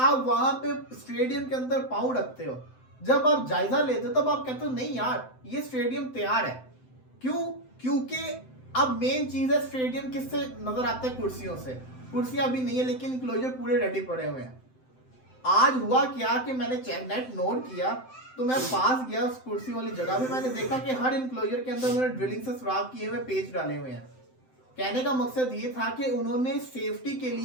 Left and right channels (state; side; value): late; right; 7.8 ms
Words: वहां पे स्टेडियम के अंदर पांव रखते हो, जब आप जायजा लेते हो, तब आप कहते हो नहीं यार ये स्टेडियम तैयार है। क्यों? क्योंकि अब मेन चीज है, स्टेडियम किससे नजर आता है? कुर्सियों से। कुर्सियां अभी नहीं है लेकिन इंक्लोजर पूरे रेडी पड़े हुए हैं। आज हुआ क्या कि मैंने नेट नोट किया, तो मैं पास गया उस कुर्सी वाली जगह पे, मैंने देखा कि हर इंक्लोजर के अंदर उन्होंने ड्रिलिंग से सुराख किए हुए पेज डाले हुए हैं। कहने का मकसद ये था कि उन्होंने सेफ्टी के